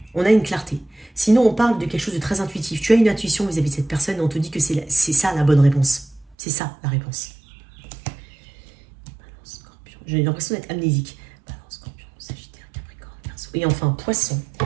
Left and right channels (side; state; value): left; drops out; at 6.4 s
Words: on a une clarté. Sinon, on parle de quelque chose de très intuitif. Tu as une intuition vis-à-vis de cette personne et on te dit que c'est ça la bonne réponse. C'est ça la réponse. Balance, Scorpion. J'ai l'impression d'être amnésique. Balance, Scorpion, Sagittaire, Capricorne, Verseau. Et enfin, Poisson.